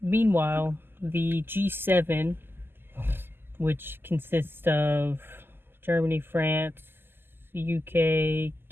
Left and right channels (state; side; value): late; left; 0.10 ms